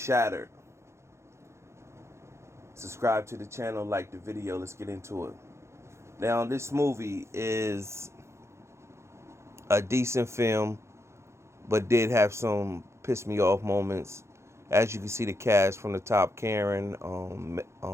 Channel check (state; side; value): late; left; 0.13 ms